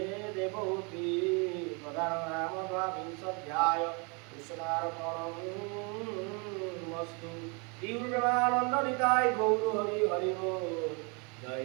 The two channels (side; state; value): left; quieter; 32.3 dB